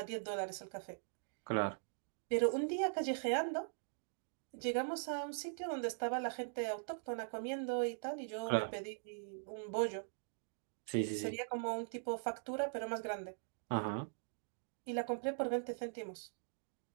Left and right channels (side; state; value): left; silent; digital silence